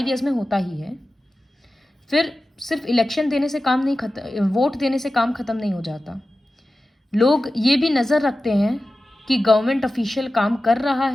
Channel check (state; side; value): normal; both; correlation 0.94